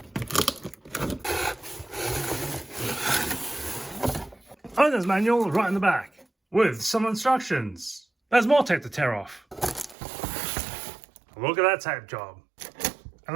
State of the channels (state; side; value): drops out; left; at 10.0 s